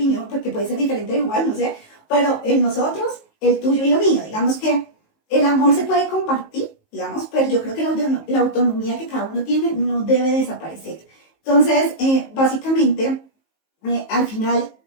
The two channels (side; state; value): right; late; 19 ms